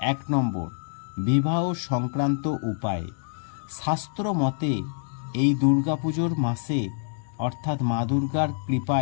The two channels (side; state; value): right; silent; digital silence